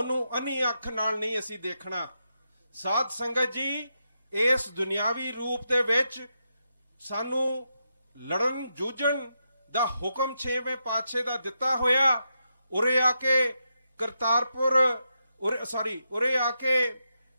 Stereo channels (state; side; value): inverted; both; correlation -0.84